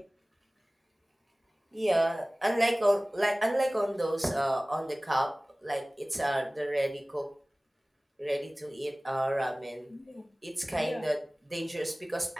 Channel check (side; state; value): both; normal; correlation 0.98